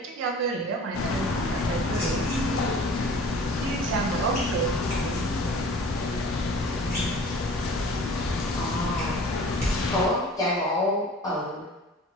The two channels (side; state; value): both; normal; correlation 0.44